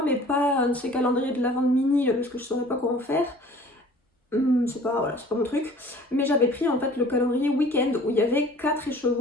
mais pas un de ces calendriers de l'Avent de mini, parce que je ne saurais pas quoi en faire. C'est pas mon truc. Mais j'avais pris en fait le calendrier week-end, où il y avait 4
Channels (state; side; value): normal; both; correlation 0.49